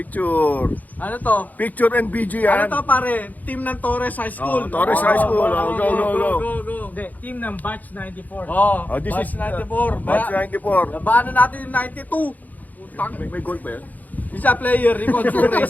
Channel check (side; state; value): right; late; 0.081 ms